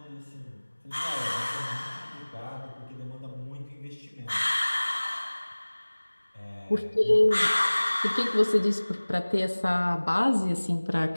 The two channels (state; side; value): inverted; both; correlation -1.00